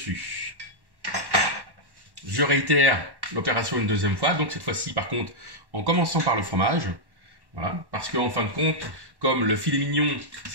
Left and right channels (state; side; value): late; left; 1.1 ms